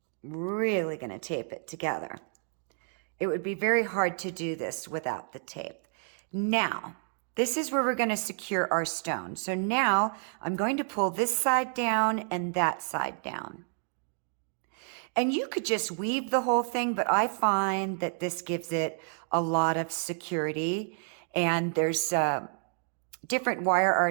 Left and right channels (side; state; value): left; silent; 58 dB below the other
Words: Really going to tape it together. It would be very hard to do this without the tape. Now, this is where we're going to secure our stone. So now I'm going to pull this side down and that side down. And you could just weave the whole thing, but I find that this gives it a lot of security. And there's different wire